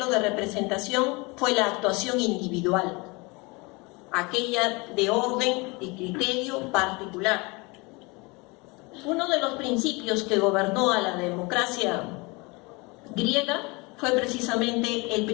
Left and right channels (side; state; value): right; quieter; 26.6 dB